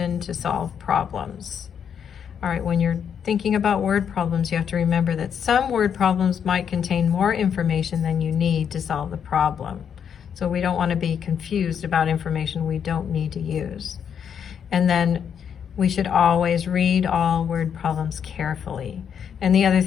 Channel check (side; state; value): right; quieter; 7.8 dB